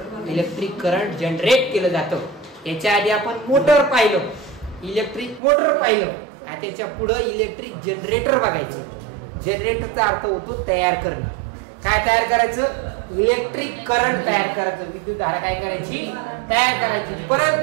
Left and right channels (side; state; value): left; drops out; at 5.4 s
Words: इलेक्ट्रिक करंट जनरेट केलं जातं. याच्या आधी आपण मोटर पाहिलं, इलेक्ट्रिक मोटर पाहिलं, त्याच्या पुढे इलेक्ट्रिक जनरेटर बघायचं. जनरेटरचा अर्थ होतो तयार करणं. काय तयार करायचं, इलेक्ट्रिक करंट तयार करायचं, विद्युत धारा काय करायची, तयार करायची.